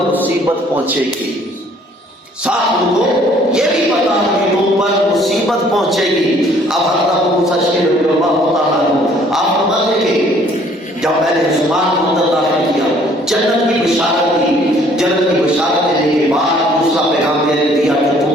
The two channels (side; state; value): both; normal; correlation 0.59